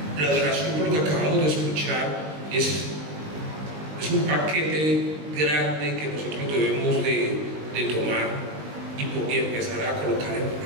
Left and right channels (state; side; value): late; left; 20 ms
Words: La adoración, por lo que acabamos de escuchar, es un paquete grande que nosotros debemos de tomar y empezar a colocar en